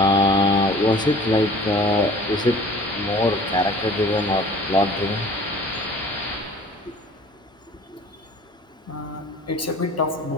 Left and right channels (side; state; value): both; normal; correlation 0.48